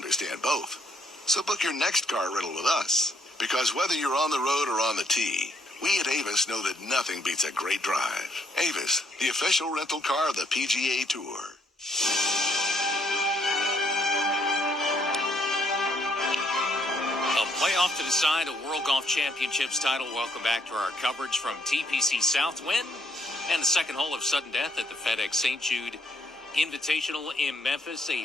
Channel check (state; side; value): normal; both; correlation 0.70